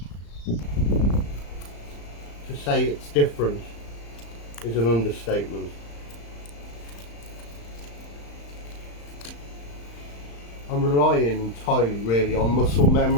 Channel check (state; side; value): late; right; 35 ms